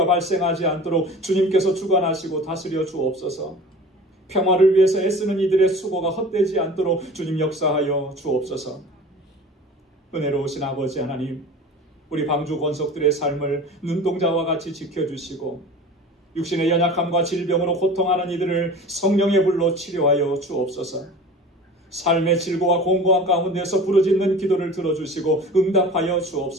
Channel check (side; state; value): both; normal; correlation 0.39